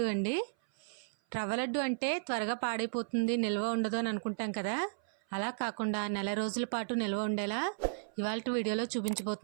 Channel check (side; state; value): left; silent; 55 dB below the other